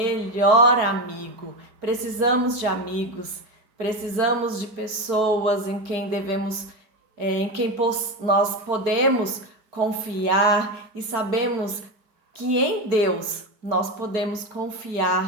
amigo. Precisamos de amigos, precisamos de pessoas em quem nós podemos confiar e sabemos que em Deus nós podemos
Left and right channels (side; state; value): left; late; 4.7 ms